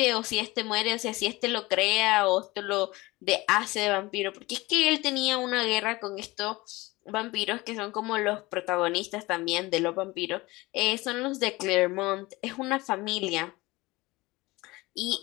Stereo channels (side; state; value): right; quieter; 21.2 dB